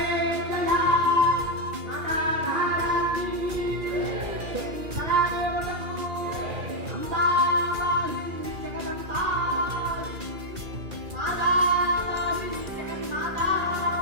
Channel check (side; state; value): left; late; 2.4 ms